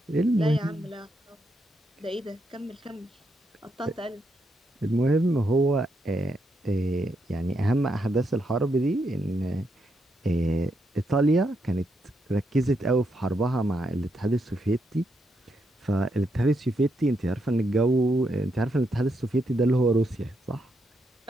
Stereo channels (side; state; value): both; normal; correlation 0.80